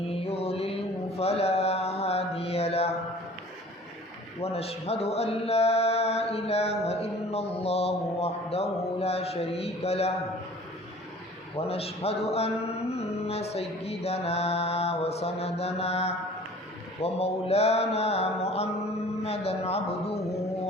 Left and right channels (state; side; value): normal; both; correlation 0.47